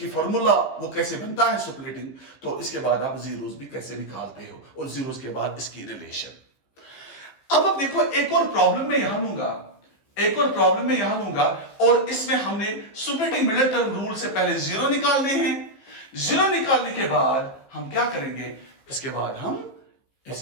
फॉर्मूला वो कैसे बनता है सुपरेटिंग, तो इसके बाद आप जीरोस भी कैसे निकालते हो और जीरोस के बाद इसकी रिलेशन। अब देखो एक और प्रॉब्लम में यहां लूंगा, एक और प्रॉब्लम में यहां लूंगा, और इसमें हमने सुपरेटिंग मिडिल टर्म रूल से पहले जीरो निकालने हैं। जीरो निकालने के बाद हम क्या करेंगे, इसके बाद हम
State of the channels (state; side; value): late; right; 15 ms